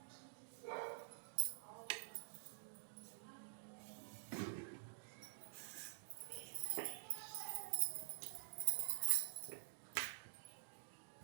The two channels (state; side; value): silent; left; digital silence